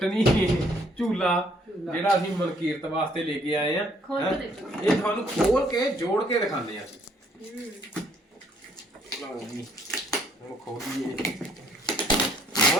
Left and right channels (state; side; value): normal; both; correlation 0.65